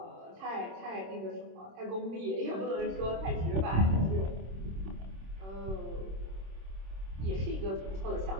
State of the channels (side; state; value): left; late; 26 ms